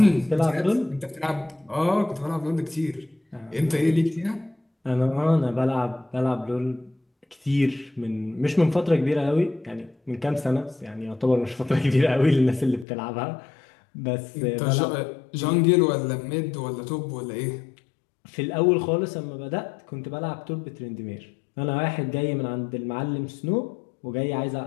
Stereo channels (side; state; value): right; drops out; at 12.9 s